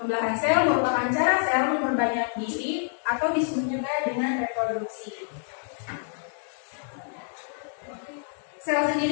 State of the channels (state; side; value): silent; right; 60 dB below the other